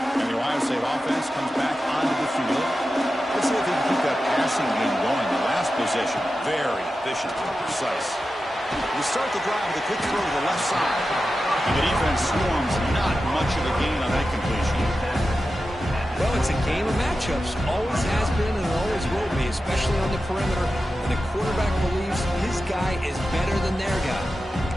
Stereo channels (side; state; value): both; normal; correlation 0.92